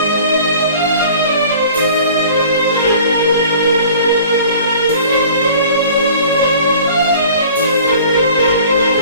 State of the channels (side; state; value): both; inverted; correlation -0.47